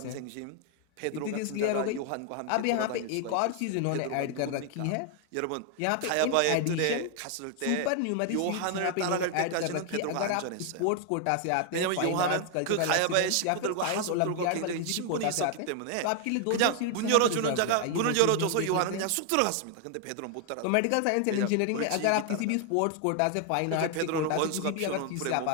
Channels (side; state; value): both; different; correlation 0.00